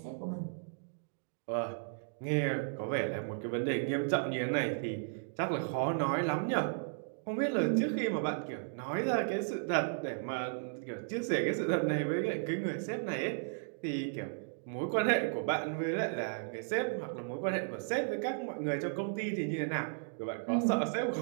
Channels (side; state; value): left; silent; digital silence